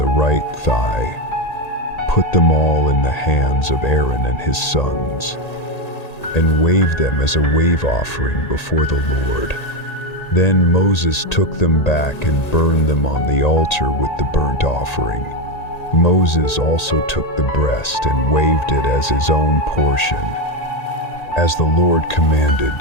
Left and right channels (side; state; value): right; late; 1.8 ms